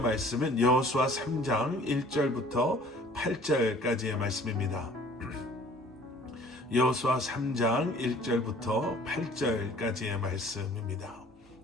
말씀은 여호수아 3장 1절부터 8절까지의 말씀입니다. 여호수아 3장 1절부터 8절까지의 말씀입니다.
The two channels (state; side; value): normal; both; correlation 0.52